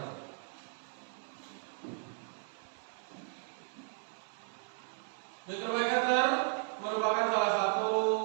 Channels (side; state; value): left; silent; 54 dB below the other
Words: Mikrometer merupakan salah satu